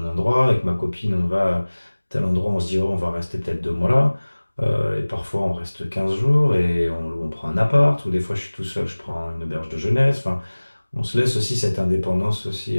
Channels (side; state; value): both; inverted; correlation -1.00